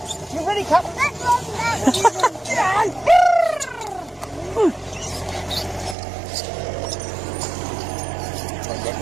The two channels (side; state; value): left; drops out; at 6.0 s